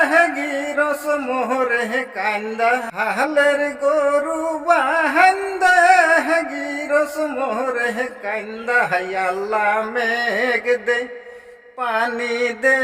গিরস মোহরে কান্দা, আহলের গরু বাহেন্দা গিরস মোহরে কান্দা, আল্লাহ মেঘ দে, পানি দে,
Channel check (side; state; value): both; identical; correlation 1.00